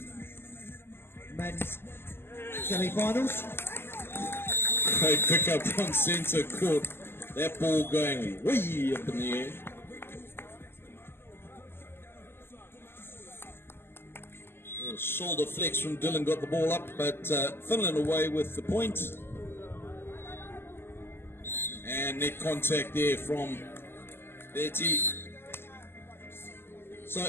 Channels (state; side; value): late; right; 0.11 ms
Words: men's semi-finals. Great pickup on centre court. That ball going way up in the air. A shoulder flex from Dylan got the ball up, but Finland away with the point. And net contact there from Vetti. So